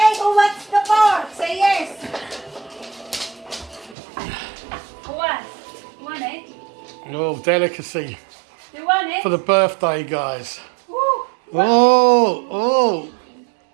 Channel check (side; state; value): left; drops out; at 4.0 s